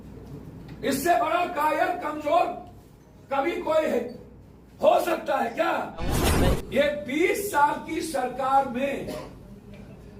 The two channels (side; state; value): both; identical; correlation 1.00